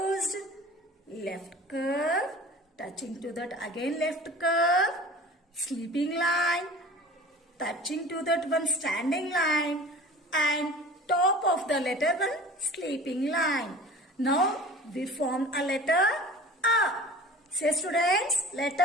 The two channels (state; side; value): normal; both; correlation 0.41